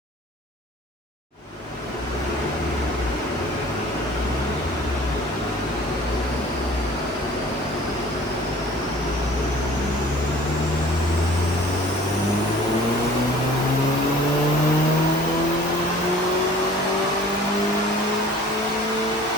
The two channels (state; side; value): normal; both; correlation 0.48